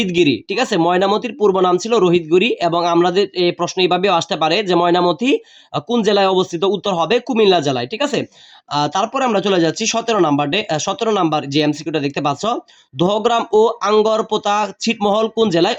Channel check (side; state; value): both; identical; correlation 1.00